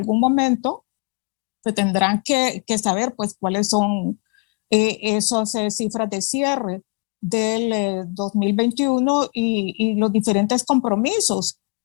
momento se tendrán que saber, pues, cuáles son esas cifras de cierre del 2021 y los diferentes compromisos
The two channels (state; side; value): quieter; right; 33.0 dB